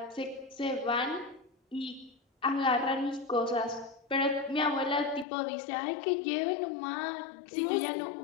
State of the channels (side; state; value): right; drops out; at 5.2 s